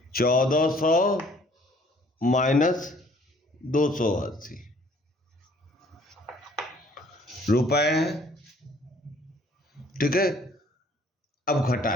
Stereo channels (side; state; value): both; normal; correlation 0.58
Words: $1400 माइनस 280, रुपए है, ठीक है। अब